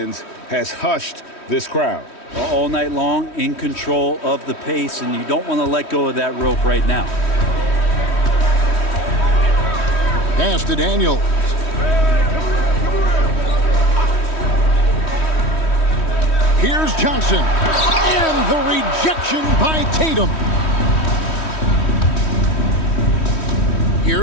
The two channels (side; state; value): right; late; 3.1 ms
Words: has hushed this crowd. All night long, in control of the pace, and you don't want to let go of that rope right now. Pass to Daniels. Here's Johnson. And the rejection by Tatum.